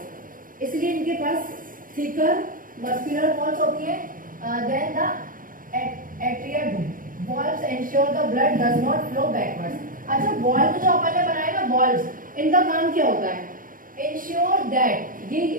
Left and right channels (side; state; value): left; late; 0.40 ms